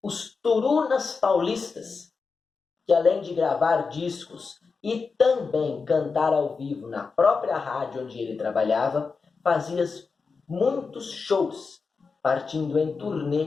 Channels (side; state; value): right; quieter; 4.8 dB